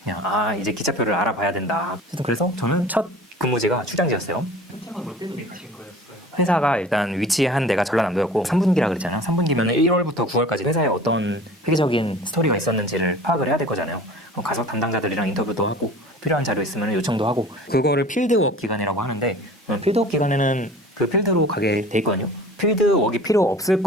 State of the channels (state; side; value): normal; both; correlation 0.43